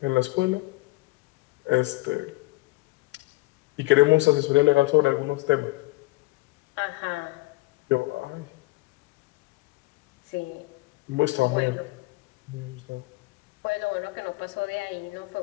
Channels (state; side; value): quieter; right; 22.4 dB